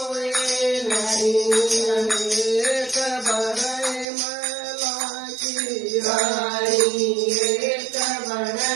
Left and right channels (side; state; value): left; drops out; at 4.0 s